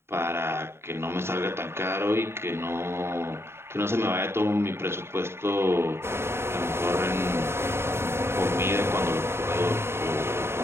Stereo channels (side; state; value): left; late; 0.12 ms